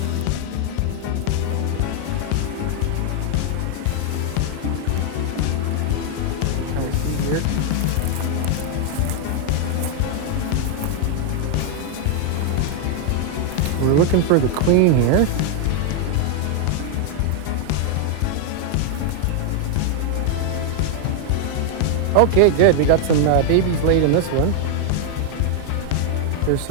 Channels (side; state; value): both; different; correlation 0.00